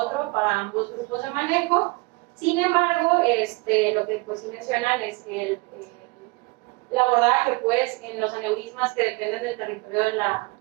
para ambos grupos de manejo. Sin embargo, lo que pues sí mencionan es que el abordaje pues en los aneurismas que dependen del territorio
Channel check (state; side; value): quieter; left; 26.6 dB